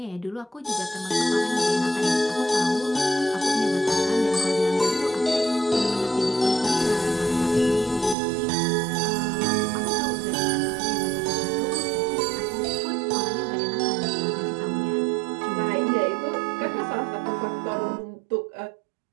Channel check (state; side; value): drops out; left; at 8.2 s